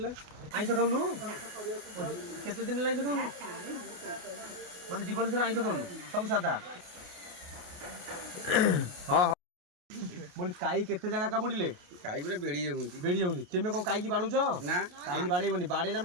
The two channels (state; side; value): late; left; 28 ms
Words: आईस खाऊनु केते दिन आईस खाऊनु माने जीवन सारा आईस खाऊनु सब सादा हाँ बोली काई केते जगह कामुड़िले काई गुरे बेड़ी जाउनी तेमे को काई की बाडुछ ना काई बाड़ेबनी बाड़ेला हम